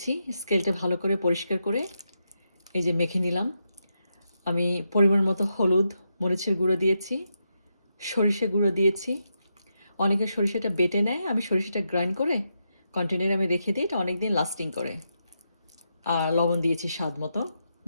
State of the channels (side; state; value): both; inverted; correlation -0.84